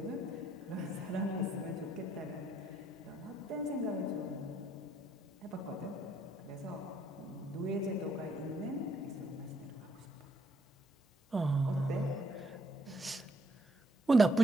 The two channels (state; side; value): normal; both; correlation 0.70